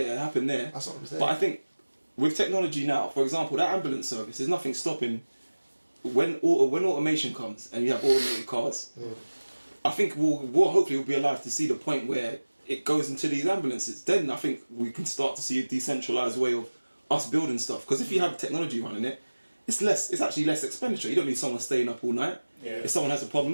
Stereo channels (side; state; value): both; inverted; correlation -1.00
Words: happened there. That's what I'm saying. But I think with technology now, for example, that ambulance service, there's nothing stopping when automation comes and you have automated cars. I think we'll hopefully be alive to see the point where it goes into these ambulances. Then I think we can start to see a decentralized way of us building stuff. Because if you have technology running it, it's actually less expenditure. You don't need someone staying up all night. Yeah. If someone has a